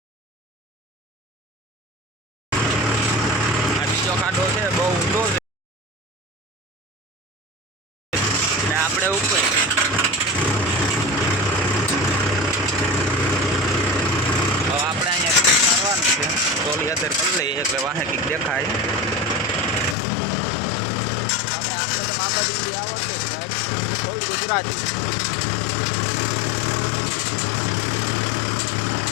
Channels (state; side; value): drops out; right; at 20.0 s